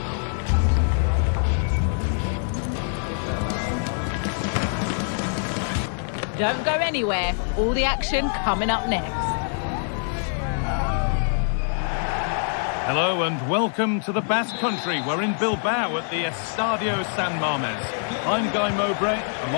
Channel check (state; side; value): silent; right; 62 dB below the other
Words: Don't go anywhere. All the action coming up next. Hello and welcome to the Basque Country. We're in Bilbao at the Estadio San Mamés. I'm Guy Mowbray.